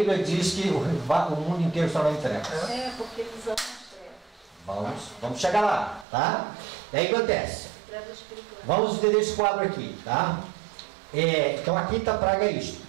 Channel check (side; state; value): left; drops out; at 6.1 s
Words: diz que o mundo inteiro está na trevas. Porque eles amam as trevas. Vamos chegar lá, tá? E aí acontece. Vamos entender esse quadro aqui, tá? Então a quinta praga é isto.